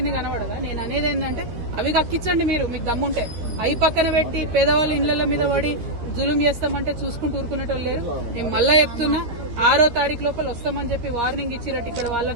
కనబడదా? నేను అనేది ఏంటంటే అవి కక్కించండి మీరు, మీకు దమ్ముంటే. అవి పక్కన పెట్టి పేదవాళ్ళ ఇళ్ల మీద పడి జులుం చేస్తామంటే చూసుకుంటూ ఊరుకునేటోళ్ళు లేరు. నేను మళ్ళా చెప్తున్నా, 6వ తారీఖు లోపల వస్తామని చెప్పి వార్నింగ్ ఇచ్చినట్టు ఇక్కడ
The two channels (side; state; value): left; late; 13 ms